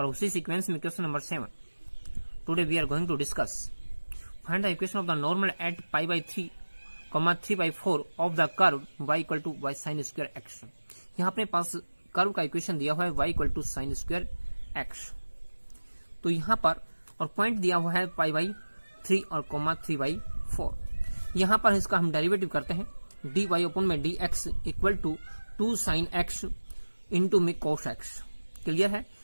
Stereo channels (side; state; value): both; inverted; correlation -1.00